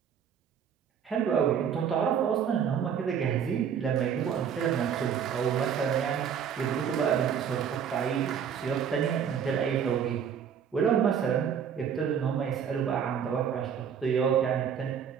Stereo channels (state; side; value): quieter; left; 7.9 dB